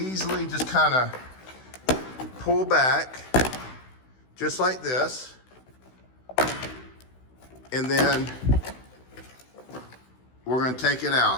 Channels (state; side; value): late; right; 16 ms